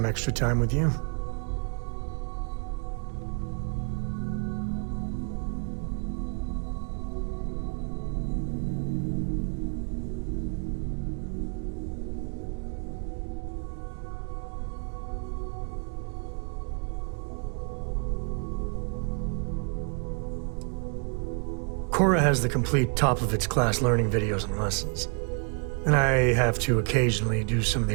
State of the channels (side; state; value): left; quieter; 39.9 dB